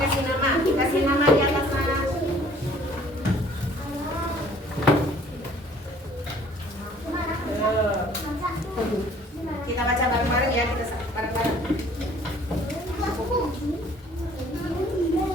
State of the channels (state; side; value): normal; both; correlation 0.56